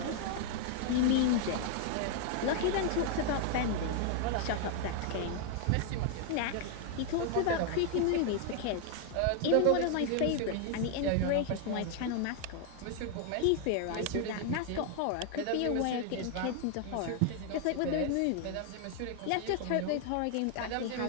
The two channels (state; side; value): different; both; correlation 0.00